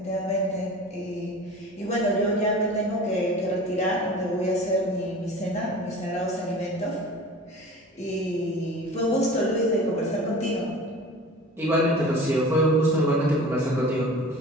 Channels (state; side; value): normal; both; correlation 0.40